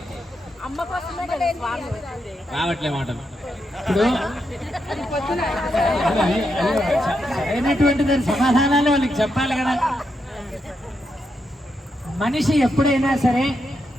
రావట్లే మాట ఇప్పుడు అయినటువంటి దాని సమాధానాలు వాళ్ళకి చెప్పాలి కదా. మనిషి ఎప్పుడైనా సరే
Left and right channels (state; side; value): normal; both; correlation 0.83